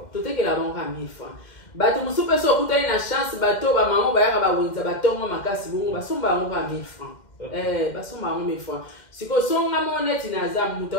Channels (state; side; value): late; right; 2.1 ms